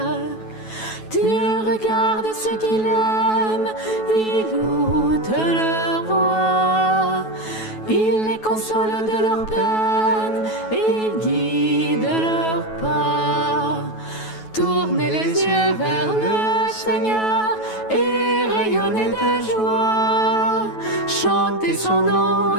Dieu regarde ceux qu'il aime, il ôte leur voix, il les console de leur peine, il guide leurs pas. Tournez les yeux vers le Seigneur et rayonnez de joie. Chantez son nom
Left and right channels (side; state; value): right; late; 9.2 ms